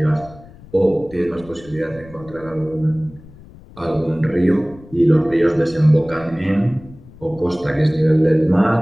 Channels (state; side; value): noise; left; rumble, 21 dB below the sound